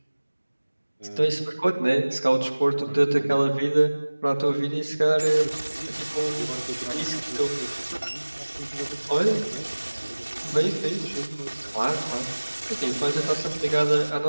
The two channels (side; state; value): both; inverted; correlation -1.00